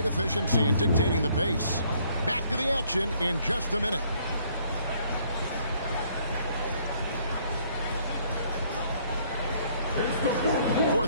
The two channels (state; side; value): inverted; both; correlation -0.64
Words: efficiency and dictating the pace. Back to the action in just a minute.